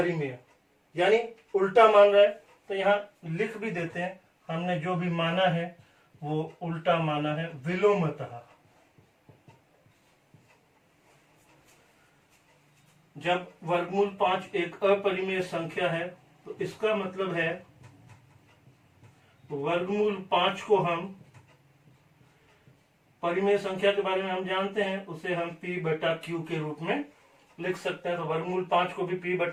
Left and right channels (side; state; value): both; identical; correlation 1.00